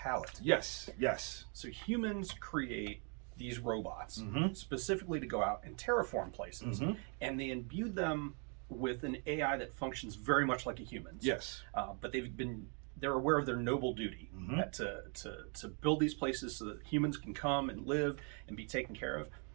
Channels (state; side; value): quieter; left; 38.8 dB